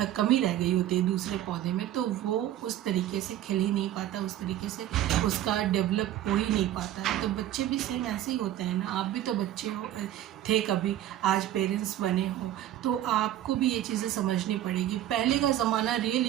कमी रह गई होती है दूसरे पौधे में, तो वो उस तरीके से खिल ही नहीं पाता, उस तरीके से उसका डेवलप हो ही नहीं पाता है। तो बच्चे भी सेम ऐसे ही होते हैं ना। आप भी तो बच्चे थे कभी, आज पेरेंट्स बने हो, तो आपको भी ये चीज़ें समझनी पड़ेगी। पहले का ज़माना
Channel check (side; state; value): left; quieter; 12.6 dB